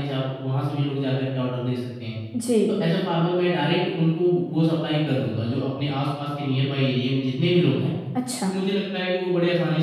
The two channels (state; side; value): identical; both; correlation 1.00